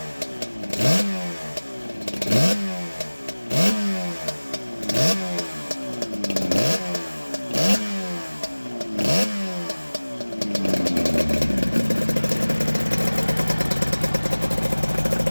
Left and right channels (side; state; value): both; inverted; correlation -1.00